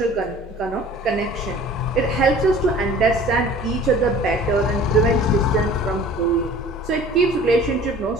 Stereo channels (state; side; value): normal; both; correlation 0.47